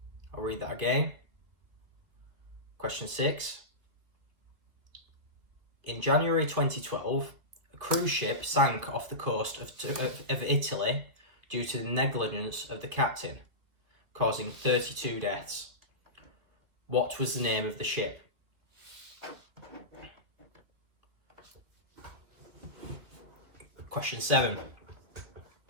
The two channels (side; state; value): left; late; 2.7 ms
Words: I'll read that again. Question 6. In January 2012, a cruise ship sank off the coast of Italy due to the negligence of the captain, causing 32 deaths. What was the name of the ship? Question 7.